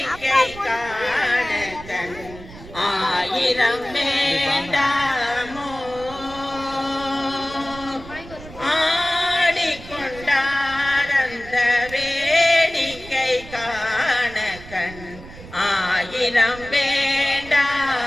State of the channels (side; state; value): right; noise; rumble, 16 dB below the sound